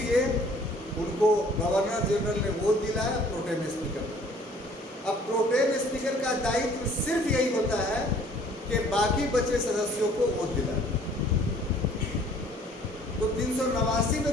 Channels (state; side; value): normal; both; correlation 0.55